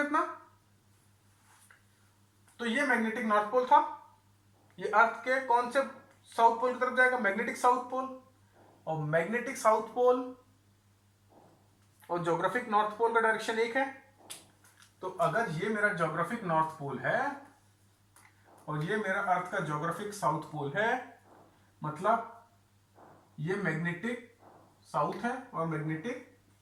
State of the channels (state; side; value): identical; both; correlation 1.00